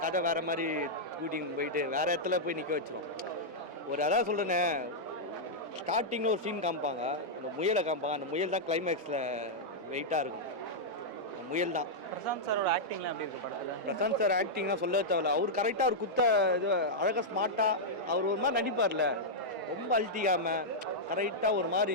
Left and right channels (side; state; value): both; normal; correlation -0.07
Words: கதை வேறு மாதிரி கூட்டின்னு போயிட்டு வேறு இடத்துல போய் நிற்க வச்சிரும். அதான் சொல்கிறேன்னே, ஸ்டார்டிங்கில் ஒரு சீன் காமிப்பாங்க, அந்த முயலை காமிப்பாங்க. அந்த முயல் தான் கிளைமேக்ஸில் வெயிட்டாக இருக்கும். அந்த முயல் தான். பிரசாந்த் சாரோட ஆக்டிங்லாம் எப்படி இருக்கு படத்தில்? பிரசாந்த் சார் ஆக்டிங்லாம் சொல்ல தேவையில்ல. அவர் கரெக்டாக அவர் குத்த இது அழகாக ஸ்மார்ட்டாக அவர் ஒரு மாதிரி நடிப்பார்ல, ரொம்ப அழட்டிக்காமல் கரெக்டாக ஒரு